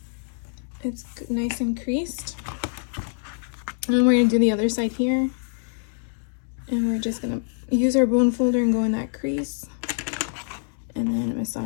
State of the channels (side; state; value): right; silent; digital silence